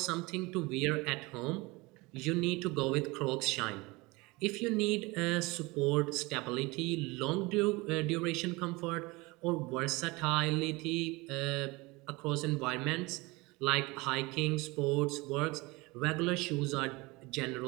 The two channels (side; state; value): left; quieter; 23.6 dB